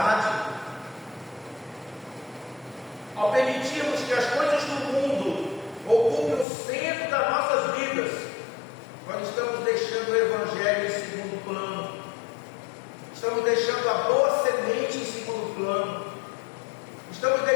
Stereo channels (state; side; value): drops out; right; at 6.5 s